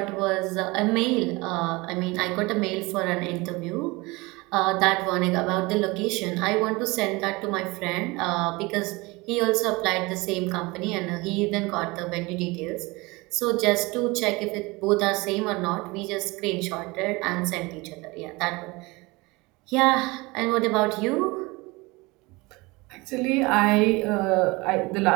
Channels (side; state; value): left; quieter; 23.9 dB